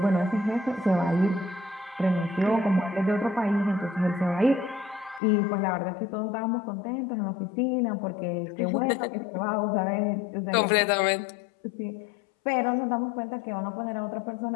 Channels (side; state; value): right; drops out; at 5.2 s